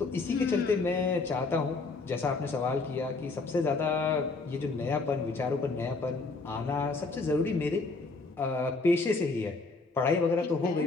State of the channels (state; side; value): quieter; right; 3.8 dB